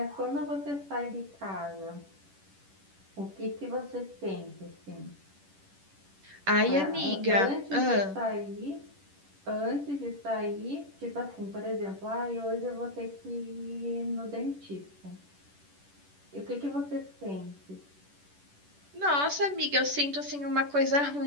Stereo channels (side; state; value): left; late; 10 ms